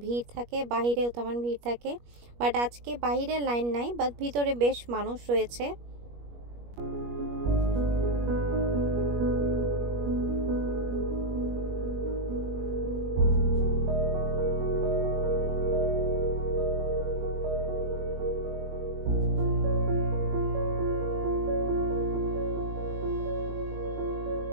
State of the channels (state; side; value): late; left; 21 ms